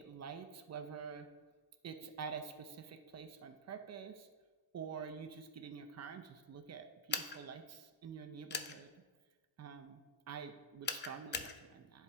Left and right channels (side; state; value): both; normal; correlation -0.08